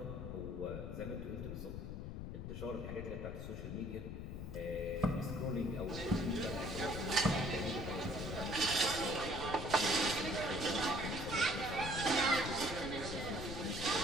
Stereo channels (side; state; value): left; noise; rumble, 6 dB below the sound